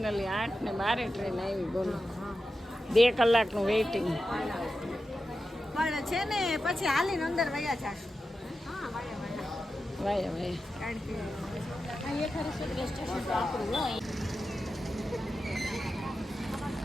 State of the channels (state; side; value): normal; both; correlation 0.91